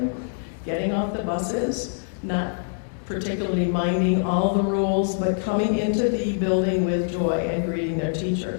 getting off the buses, not particularly minding all the rules, but coming into the building with joy and greeting their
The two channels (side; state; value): right; silent; digital silence